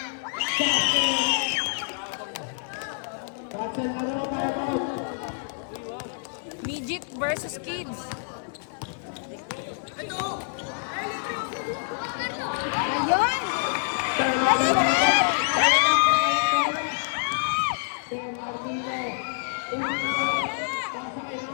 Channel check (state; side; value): silent; right; 58 dB below the other